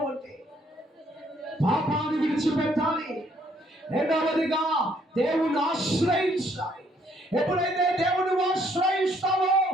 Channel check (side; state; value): both; normal; correlation 0.67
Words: ఉంటే పాపాన్ని విడిచిపెట్టాలి. రెండవదిగా దేవుని ఆశ్రయించాలి. ఎప్పుడైతే దేవుని ఆశ్రయిస్తావో